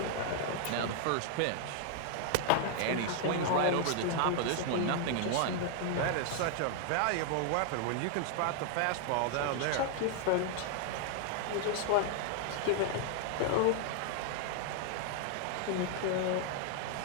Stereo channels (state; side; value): different; both; correlation 0.00